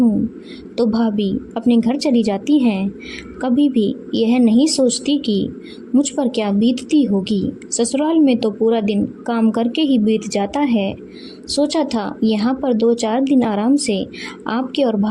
तो भाभी अपने घर चली जाती हैं। कभी भी यह नहीं सोचती कि मुझ पर क्या बीतती होगी। ससुराल में तो पूरा दिन काम करके ही बीत जाता है। सोचा था यहाँ पर 2-4 दिन आराम से आपके और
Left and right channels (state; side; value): identical; both; correlation 1.00